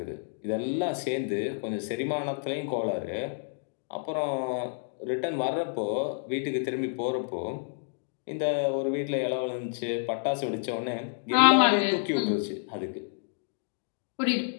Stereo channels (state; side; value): silent; right; digital silence